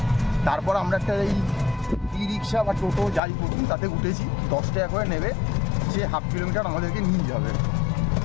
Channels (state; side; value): drops out; right; at 3.2 s